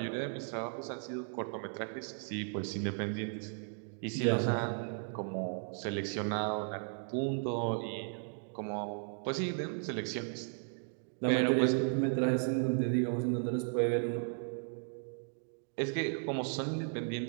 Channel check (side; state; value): left; silent; 54 dB below the other